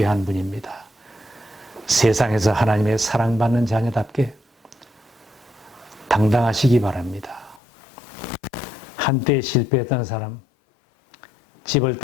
분입니다. 세상에서 하나님의 사랑받는 자녀답게 당당하시기 바랍니다. 한때 실패했던 사람, 집을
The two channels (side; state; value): right; drops out; at 7.6 s